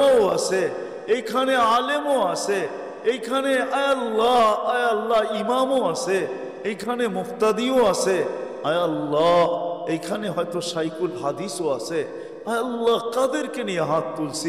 আছে, এইখানে আলেমও আছে, এইখানে আয় আল্লাহ ইমামও আছে, এইখানে মুফতাদিও আছে, আয় আল্লাহ এইখানে হয়তো শাইখুল হাদিসও আছে। আয় আল্লাহ কাদেরকে নিয়ে হাত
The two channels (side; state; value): both; identical; correlation 1.00